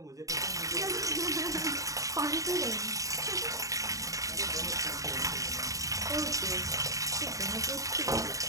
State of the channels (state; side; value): late; left; 0.16 ms